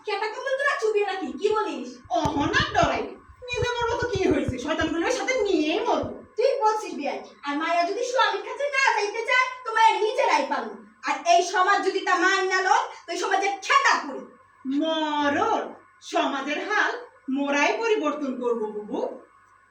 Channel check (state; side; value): identical; both; correlation 1.00